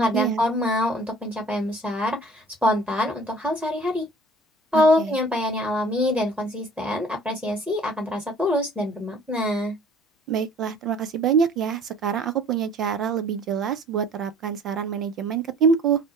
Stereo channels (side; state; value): both; normal; correlation 0.51